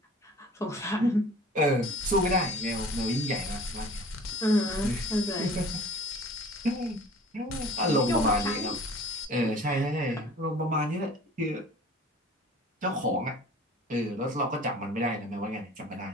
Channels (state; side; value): normal; both; correlation 0.46